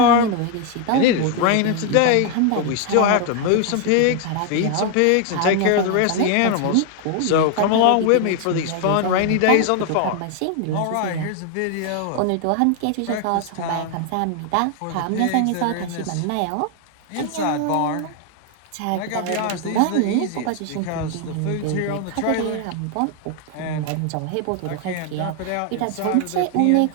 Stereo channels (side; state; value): both; different; correlation 0.01